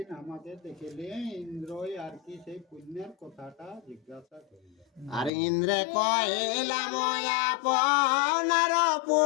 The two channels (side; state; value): right; drops out; at 5.3 s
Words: আমাকে দেখিলে ইন্দ্রই আর কি সেই পুণ্যের কথাটা জিজ্ঞাসা করিল। আর ইন্দ্রে কহিলাম আপনার